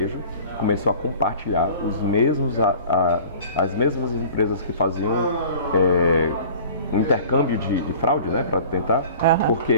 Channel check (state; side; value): inverted; both; correlation -0.45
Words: começou a compartilhar as mesmas empresas que faziam um intercâmbio de fraude, né, para tentar,